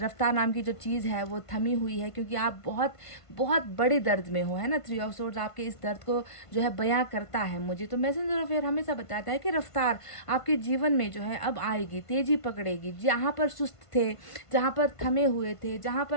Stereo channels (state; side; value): late; right; 1.5 ms